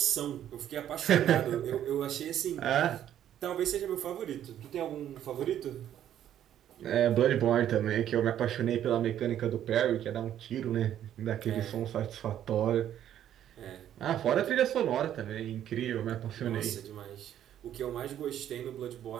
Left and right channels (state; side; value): quieter; left; 10.9 dB